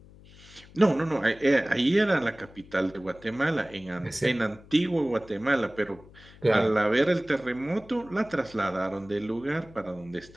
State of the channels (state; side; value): noise; left; hum, 22 dB below the sound